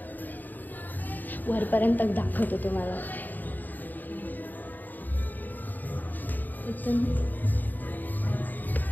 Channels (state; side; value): late; right; 0.087 ms